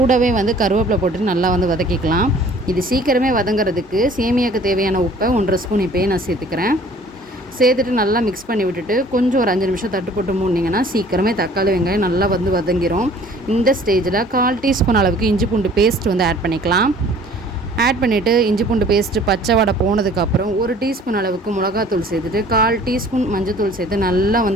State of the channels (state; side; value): normal; both; correlation 0.52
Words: வந்து கருவேப்பிலை போட்டு நல்லா வந்து வதக்கிக்கலாம். இது சீக்கிரமே வதங்கிறதுக்கு சேமியாவுக்கு தேவையான உப்பை 1.5 ஸ்பூன் இப்போயே நான் சேர்த்துக்கிறேன். சேர்த்துட்டு நல்லா மிக்ஸ் பண்ணி விட்டுட்டு கொஞ்சம் ஒரு 5 நிமிஷம் தட்டு போட்டு மூடினீங்கன்னா சீக்கிரமே தக்காளி வெங்காயம் நல்லா வந்து வதங்கிரும். இந்த ஸ்டேஜில் 1/4 டீஸ்பூன் அளவுக்கு இஞ்சி பூண்டு பேஸ்ட் வந்து ஆட் பண்ணிக்கலாம். ஆட் பண்ணிவிட்டு இஞ்சி பூண்டு பேஸ்ட்டு பச்சை வடை போனதுக்கப்புறம் 1 டீஸ்பூன் அளவுக்கு மிளகாத்தூள் சேர்த்துட்டு 1/4 டீஸ்பூன் மஞ்சத்தூள் சேர்த்து நல்லா